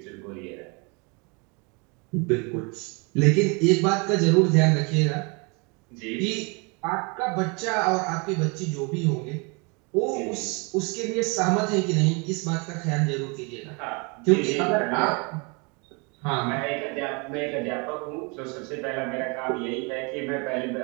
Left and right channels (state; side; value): quieter; left; 31.2 dB